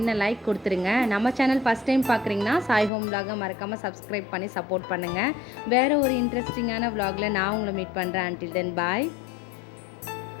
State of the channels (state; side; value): drops out; right; at 2.9 s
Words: லைக் கொடுத்துருங்க. நம்ம சேனல் ஃபஸ்ட் டைம் பார்க்குறீங்கன்னா சாய் ஹோம் vlog மறக்காமல் சப்ஸ்கிரைப் பண்ணி சப்போர்ட் பண்ணுங்கள். வேறு ஒரு இன்ட்ரெஸ்டிங்கான vlogல நான் உங்களை மீட் பண்ணுறேன். until then bye.